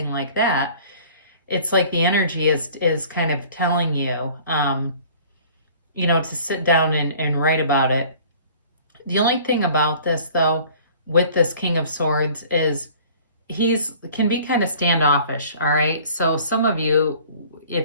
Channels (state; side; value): inverted; both; correlation -0.50